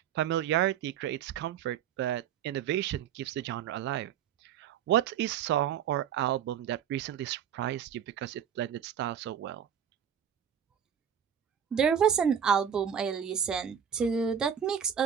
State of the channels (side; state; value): left; quieter; 8.6 dB